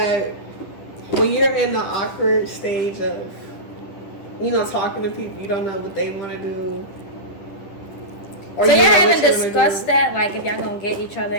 when you're in the awkward stage of, talking to people, you don't know what they want to do. So y'all haven't discussed that, like if y'all gonna get each other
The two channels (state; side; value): late; right; 10 ms